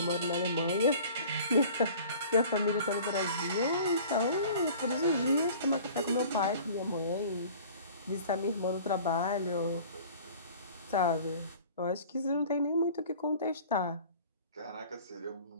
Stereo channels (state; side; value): inverted; both; correlation -0.45